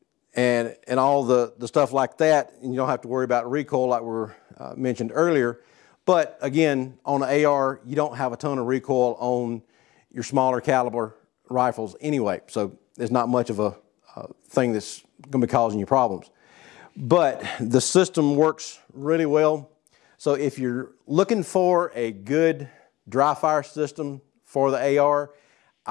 and all the stuff like that, and you don't have to worry about recoil like we mentioned earlier. But again, on an AR, you don't have a ton of recoil on your smaller caliber rifles anyway, so there's not much of a thing that's going to be causing you problems. But the system works really well. So if you're looking for a good dry fire system for the AR,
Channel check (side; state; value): right; quieter; 18.1 dB